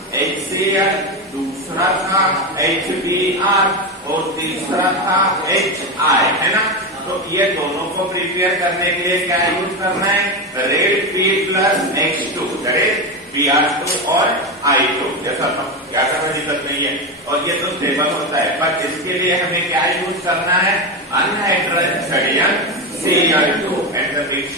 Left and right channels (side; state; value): both; normal; correlation 0.15